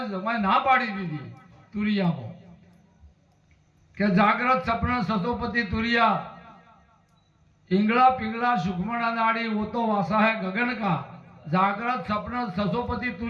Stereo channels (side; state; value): both; identical; correlation 1.00